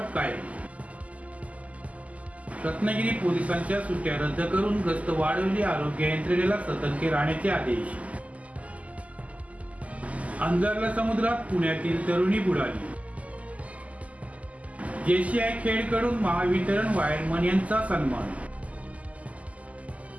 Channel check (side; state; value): left; late; 0.070 ms